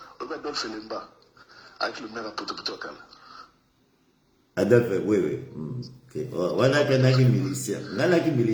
Obi Adolphe Lemba avec le maire à potopoto kala. Adolphe, oui. Okay. Wana kanaki militia. Ngana ki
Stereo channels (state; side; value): identical; both; correlation 1.00